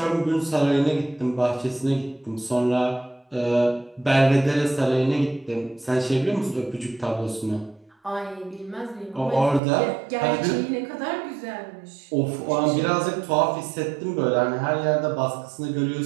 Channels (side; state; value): left; drops out; at 9.6 s